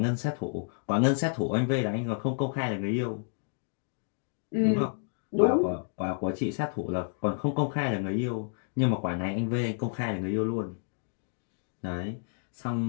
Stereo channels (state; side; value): silent; right; digital silence